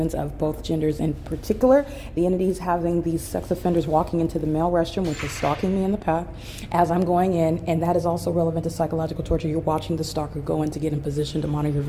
of both genders. In particular, the entities having these sex offenders walking into the male restroom, which is stalking me in the path as I'm going in. And that is also relevant to psychological torture. You're watching the stalker go in to get in position to monitor your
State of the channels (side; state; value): both; identical; correlation 1.00